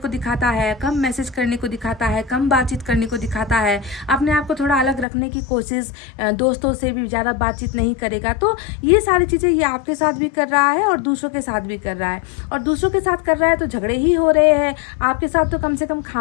दिखाता है, कम मैसेज करने को दिखाता है, कम बातचीत करने को दिखाता है, अपने आप को थोड़ा अलग रखने की कोशिश, दोस्तों से भी ज़्यादा बातचीत नहीं करेगा। तो ये सारी चीज़ें ये आपके साथ भी कर रहा है और दूसरों के साथ भी कर रहा है, और दूसरों के साथ कर रहा है तो झगड़े ही हो रहे हैं। आपके साथ तो कम से कम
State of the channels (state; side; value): drops out; right; at 5.1 s